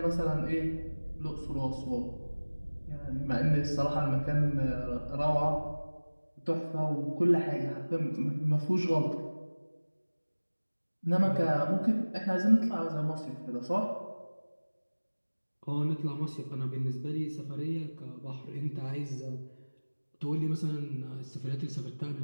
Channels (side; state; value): both; inverted; correlation -1.00